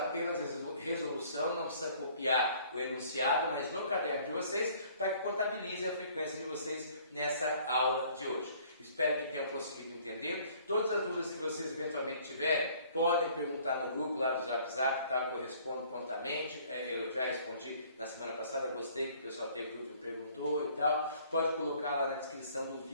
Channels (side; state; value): both; inverted; correlation -0.57